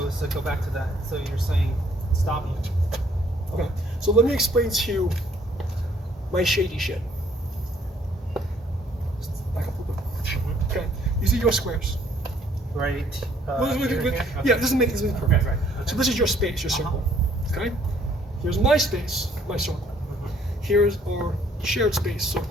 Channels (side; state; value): both; normal; correlation 0.63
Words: So go back to that. So you're saying stopping. Okay. So let me explain to you my shady shit. Back up a little bit. Okay. You see your squares. Right. Yeah, this is making perfect. Okay, right. Okay. So this is your space, your circle. Okay. Here's my space, my circle. Here's our shared space